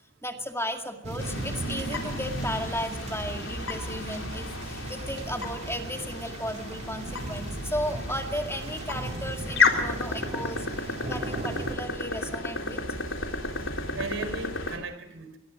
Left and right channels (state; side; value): normal; both; correlation 0.39